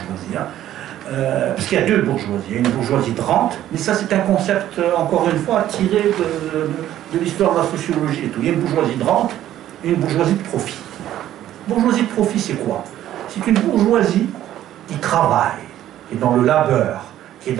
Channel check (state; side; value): quieter; left; 12.5 dB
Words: hein, parce qu'il y a deux bourgeoisies. Il y a une bourgeoisie de rente, mais ça c'est un concept, encore une fois, tiré de l'histoire de la sociologie et tout. Il y a une bourgeoisie de rente et une bourgeoisie de profit. Bourgeoisie de profit, c'est quoi? C'est une bourgeoisie qui travaille, qui est dans le labeur, qui est